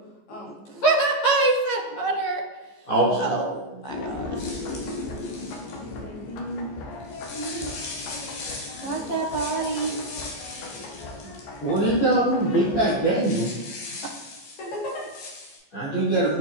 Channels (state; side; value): late; right; 14 ms